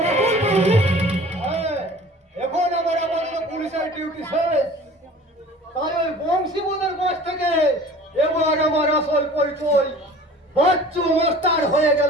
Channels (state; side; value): normal; both; correlation 0.44